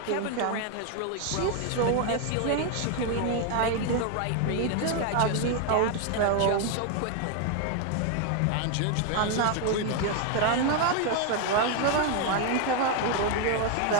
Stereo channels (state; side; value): different; both; correlation 0.01